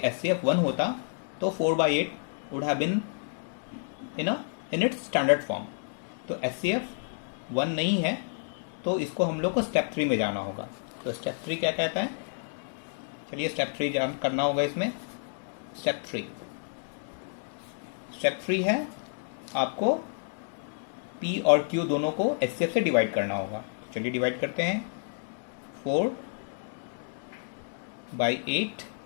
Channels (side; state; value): right; silent; digital silence